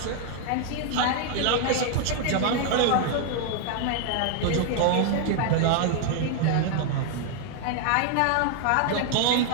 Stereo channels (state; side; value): different; both; correlation 0.00